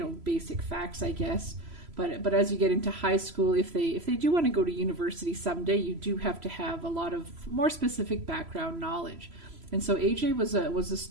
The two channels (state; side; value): late; left; 3.0 ms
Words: facts, I guess. But as you get into high school, if they do want to go to university someday, you do have to have a lot of more specific background knowledge. And so AJ was a